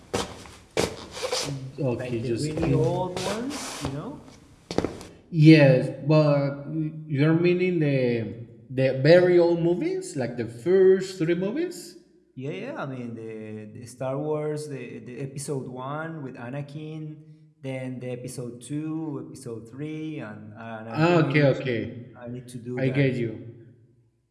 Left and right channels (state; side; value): identical; both; correlation 1.00